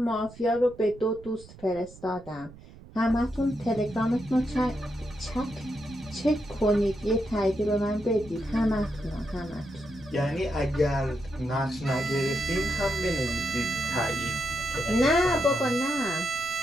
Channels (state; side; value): noise; right; rumble, 19 dB below the sound